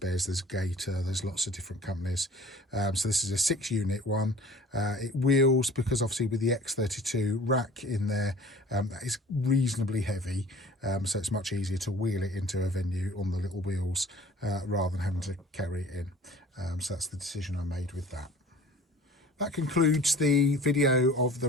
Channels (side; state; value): both; normal; correlation 0.46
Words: there's Gator, there's lots of different companies. So this is a 6-unit one. It wheels because obviously with the X32 rack in there, that is reasonably heavy, so it's much easier to wheel it into a venue on the little wheels rather than having to carry it in. So that's the decision I made with that. That concludes the video of the